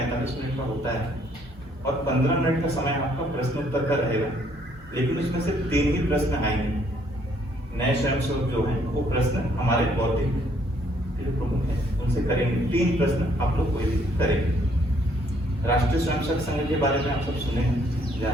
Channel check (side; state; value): both; normal; correlation 0.66